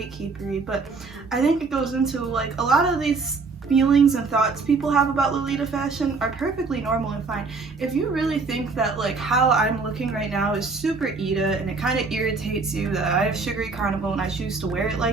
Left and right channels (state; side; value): quieter; left; 4.3 dB